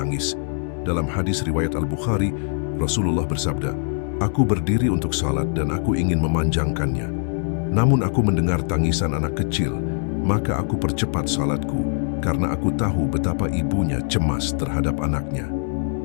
Dalam hadis riwayat Al-Bukhari, Rasulullah bersabda, "Aku berdiri untuk salat dan aku ingin memanjangkannya. Namun aku mendengar tangisan anak kecil, maka aku percepat salatku, karena aku tahu betapa ibunya cemas terhadap anaknya."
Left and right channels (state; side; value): silent; right; digital silence